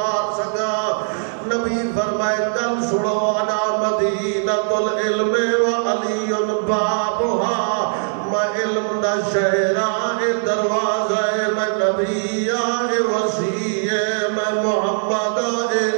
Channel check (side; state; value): left; silent; 59 dB below the other